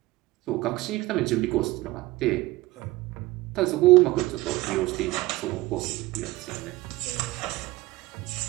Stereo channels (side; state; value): left; quieter; 19.3 dB